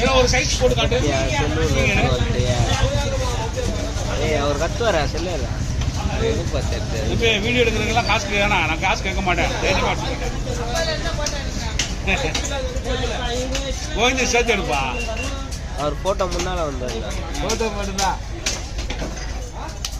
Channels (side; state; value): both; identical; correlation 1.00